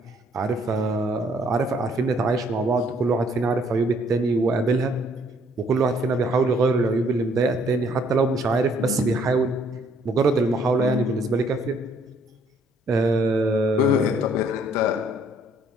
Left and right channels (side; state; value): both; normal; correlation 0.64